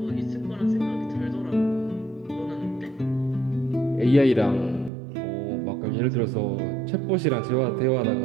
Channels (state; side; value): drops out; left; at 4.9 s